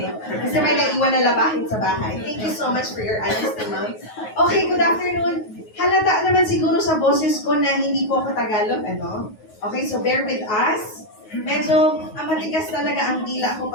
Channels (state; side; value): late; right; 9.4 ms